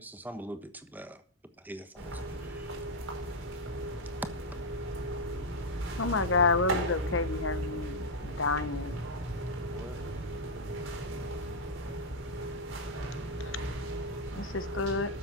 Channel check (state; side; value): normal; both; correlation 0.00